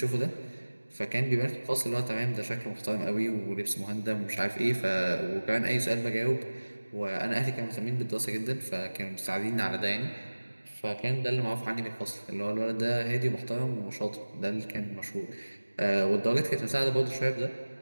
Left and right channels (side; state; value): both; inverted; correlation -1.00